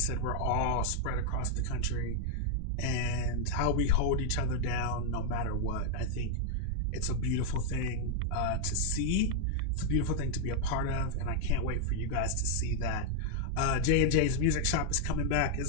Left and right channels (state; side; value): different; both; correlation 0.00